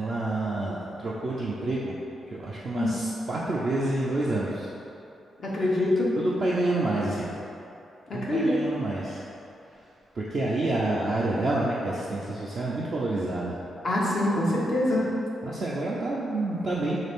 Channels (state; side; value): normal; both; correlation 0.82